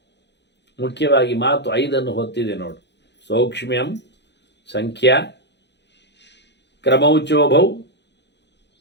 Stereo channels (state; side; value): late; right; 0.50 ms